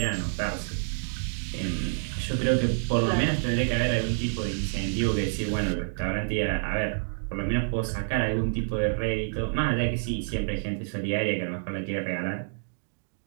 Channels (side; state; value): left; silent; digital silence